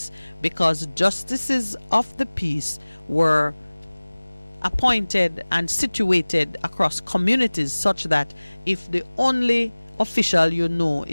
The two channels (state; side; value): inverted; both; correlation -1.00